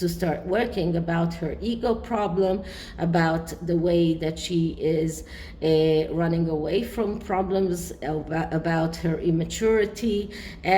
start working about her ego problem, about the way that she is running away from problems, about her immaturity,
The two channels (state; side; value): identical; both; correlation 1.00